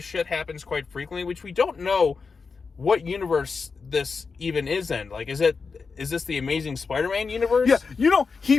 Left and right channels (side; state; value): right; quieter; 4.9 dB